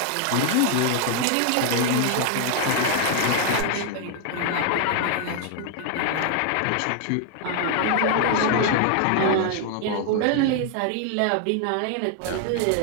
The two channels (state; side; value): different; both; correlation 0.00